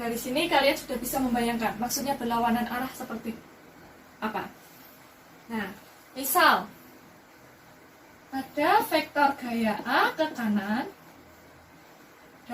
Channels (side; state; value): both; identical; correlation 1.00